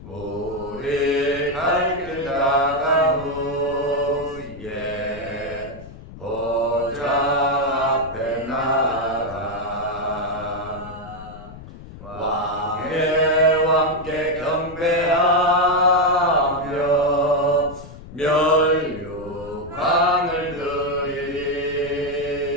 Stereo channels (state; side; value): noise; left; rumble, 16 dB below the sound